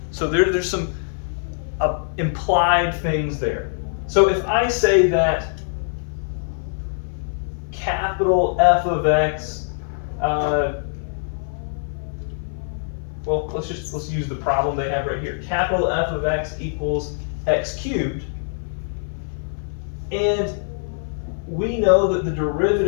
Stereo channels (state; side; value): silent; right; 57 dB below the other